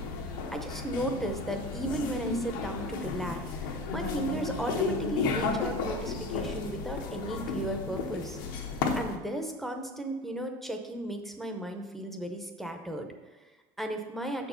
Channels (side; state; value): both; normal; correlation 0.34